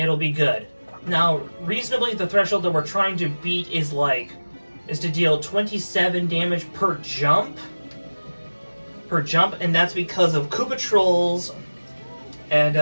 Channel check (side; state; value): both; inverted; correlation -1.00